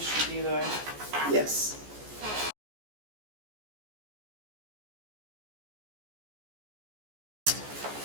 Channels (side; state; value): left; late; 14 ms